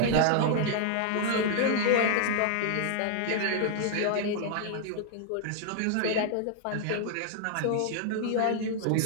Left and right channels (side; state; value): both; different; correlation -0.01